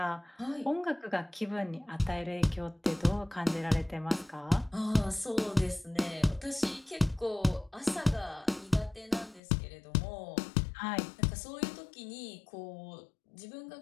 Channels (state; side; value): drops out; right; at 9.4 s